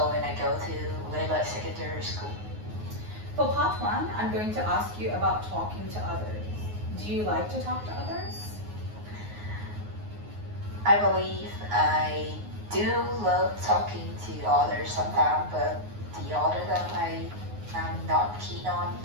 and I go to Layla Secondary School. For part one, I'm going to ask you about talking to others. Do you like to talk to others? I believe I do love talking to others sometimes, but the other time I'm not keen on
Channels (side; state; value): left; late; 9.5 ms